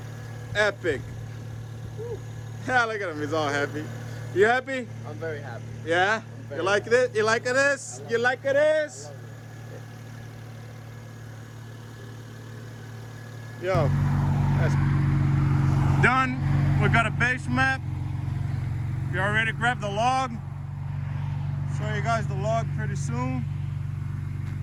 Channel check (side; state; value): both; identical; correlation 1.00